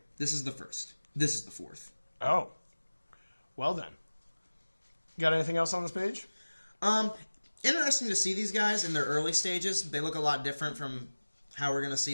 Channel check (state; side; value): inverted; both; correlation -1.00